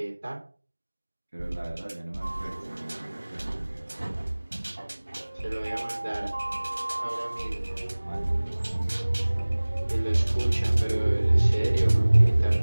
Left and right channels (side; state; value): both; inverted; correlation -1.00